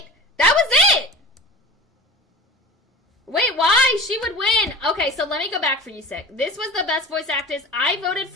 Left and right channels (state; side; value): normal; both; correlation 0.36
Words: that was it. Wait, why? She would win. Okay, so let me go back for you, Sick. This was the best voice actress. I voted